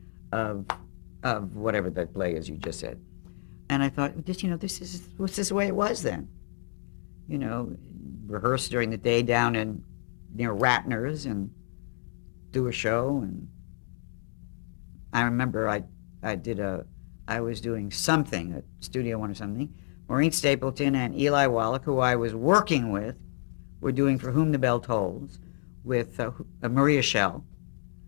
of whatever that play is you just said. And I thought, this is the way it was then. Rehearse during the day down in near Ratner's and do a show. And I remember I was doing something at Studio One or something. Maureen Stapleton and Eli Wallach, who I was working with, were doing For Whom the Bell Tolls with Maria Schell.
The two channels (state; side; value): silent; right; digital silence